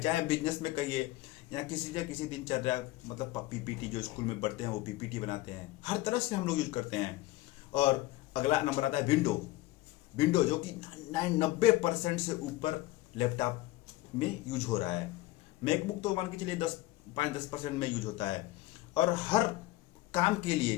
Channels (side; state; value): right; quieter; 17.3 dB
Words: चाहे बिजनेस में कहिए या किसी दिनचर्या मतलब PPT जो स्कूल में पढ़ते हैं वो PPT बनाते हैं, हर तरह से हम लोग यूज करते हैं। और अगला नंबर आता है विंडो। विंडो जो कि 90% से ऊपर लैपटॉप में यूज हो रहा है। मैकबुक तो मान के चलिए 5-10% में यूज होता है। और हर काम के